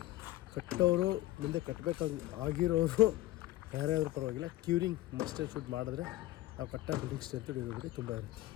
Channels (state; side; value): quieter; right; 16.3 dB